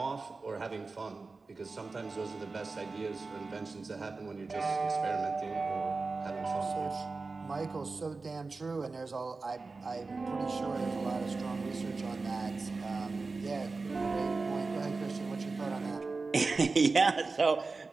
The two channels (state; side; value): quieter; left; 3.9 dB